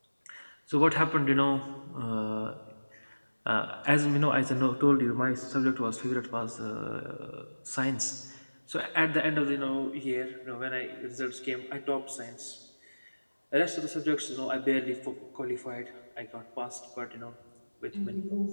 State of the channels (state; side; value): inverted; both; correlation -1.00